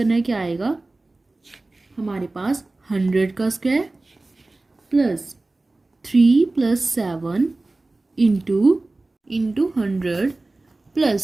है, क्या आएगा हमारे पास 100 का square plus 3 plus 7 into 100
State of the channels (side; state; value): left; quieter; 3.1 dB